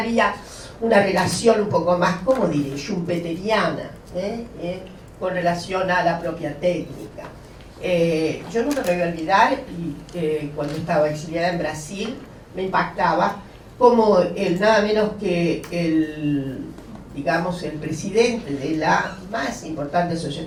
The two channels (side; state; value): both; identical; correlation 1.00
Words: una relación un poco más, ¿cómo diré?, schumpeteriana, con relación a la propia técnica. Yo nunca me voy a olvidar, cuando estaba exiliada en Brasil, me impactaba como nada menos que digamos, el presidente de la más importante